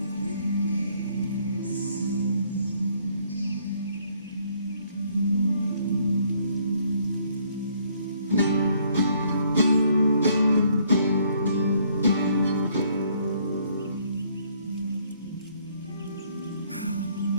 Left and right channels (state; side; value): inverted; both; correlation -0.65